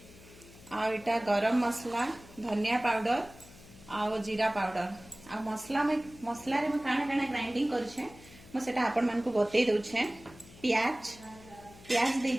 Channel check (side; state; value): left; noise; hum, 21 dB below the sound